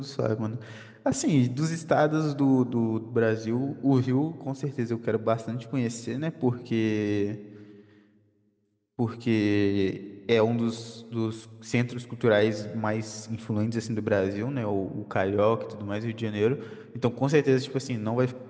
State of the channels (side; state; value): both; identical; correlation 1.00